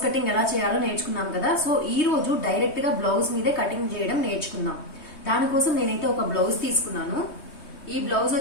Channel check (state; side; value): late; right; 3.2 ms